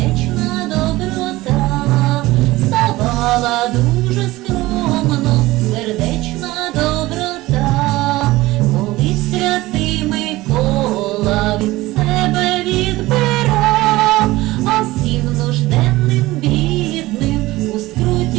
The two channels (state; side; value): quieter; left; 18.6 dB